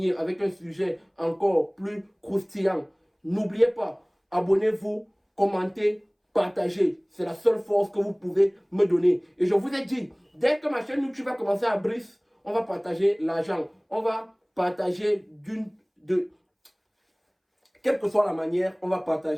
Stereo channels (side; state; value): both; identical; correlation 1.00